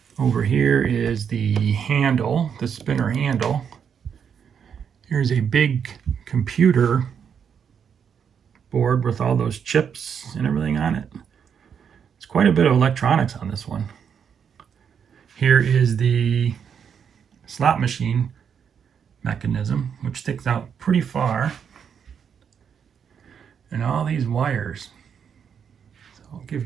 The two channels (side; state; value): left; quieter; 7.4 dB